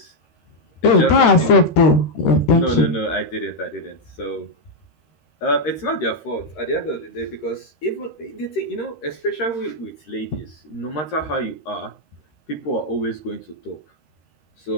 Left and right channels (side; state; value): right; late; 13 ms